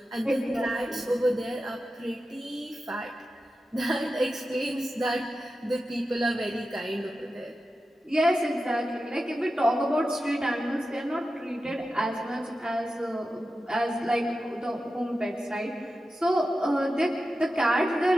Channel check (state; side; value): normal; both; correlation 0.92